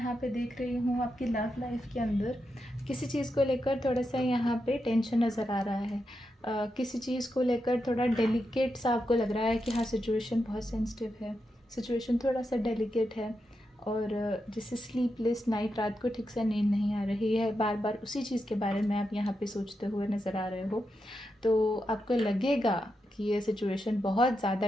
पे देख रही हूँ आपकी लव लाइफ के अंदर किसी चीज़ को लेकर थोड़ा सा यहाँ पे टेंशन नज़र आ रहा है। किसी चीज़ को लेकर थोड़ा डेलिकेट सा आपको लग रहा है कि हाँ सिचुएशन बहुत सेंसिटिव है, सिचुएशन थोड़ा सा डेलिकेट है, और जैसे स्लीपलेस नाइट, रात को ठीक से नींद नहीं आ रही है, बार बार उसी चीज़ के बारे में आप यहाँ पे सोचते हुए नज़र आ रहे हो। तो आपको लगेगा कि ये सिचुएशन बहुत ज़्यादा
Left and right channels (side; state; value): both; normal; correlation 0.86